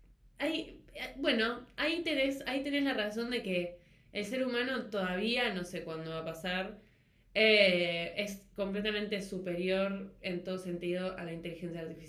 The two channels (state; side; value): identical; both; correlation 1.00